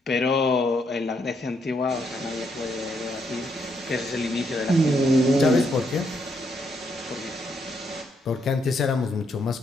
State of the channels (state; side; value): normal; both; correlation 0.76